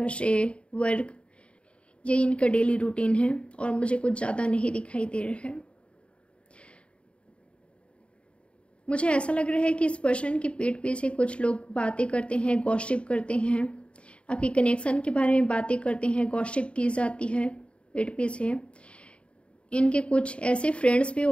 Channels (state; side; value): late; right; 0.059 ms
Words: से वर्क, ये इनका डेली रूटीन है और मुझे कुछ ज़्यादा नहीं दिखाई दे रहा है। मुझे ऐसा लग रहा है कि इस पर्सन की पीठ पीछे कुछ लोग बातें करते हैं, गॉसिप करते हैं, आपकी कनेक्शन के बारे में बातें करते हैं, गॉसिप की जाती है पीठ पीछे। इनके कुछ ऐसे फ्रेंड्स भी